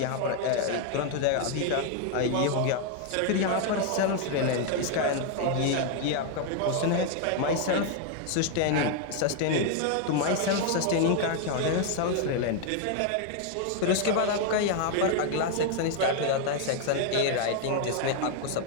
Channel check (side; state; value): both; different; correlation 0.00